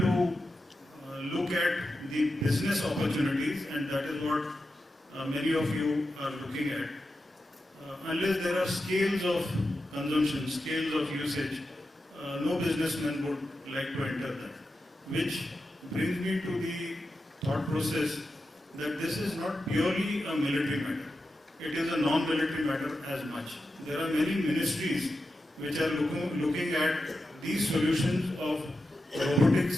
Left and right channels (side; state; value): both; normal; correlation 0.90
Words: look at the business opportunities, and that is what many of you are looking at, unless there are scales of consumption, scales of usage, no businessman would like to enter that. Which brings me to the thought process that this is not purely a military matter. It is a non-military matter as much. There are many ministries which are looking at these solutions of